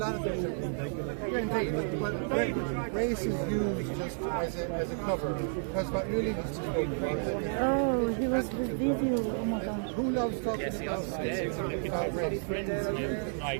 of things. Indeed, but race is used just as a cover, because what really needs to go Oh, he was the video. Oh my god. Who loves talking about race?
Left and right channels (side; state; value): left; silent; 56 dB below the other